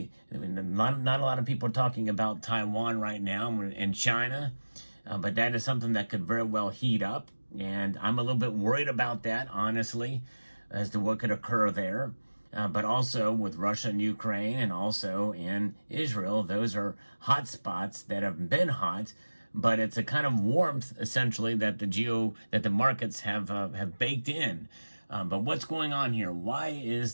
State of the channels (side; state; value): both; inverted; correlation -1.00